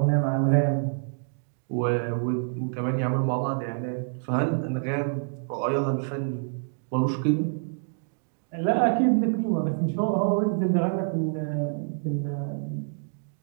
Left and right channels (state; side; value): silent; left; digital silence